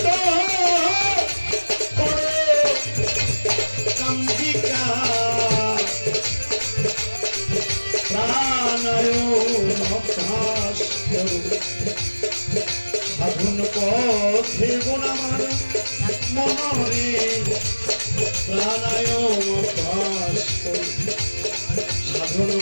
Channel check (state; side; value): inverted; both; correlation -1.00